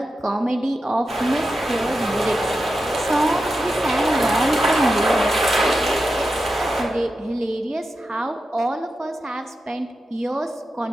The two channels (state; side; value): normal; both; correlation 0.90